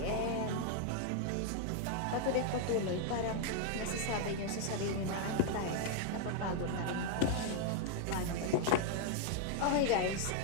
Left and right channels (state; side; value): different; both; correlation 0.00